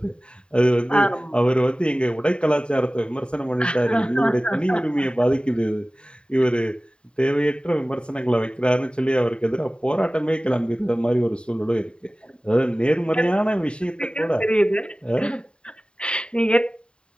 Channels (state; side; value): late; right; 0.052 ms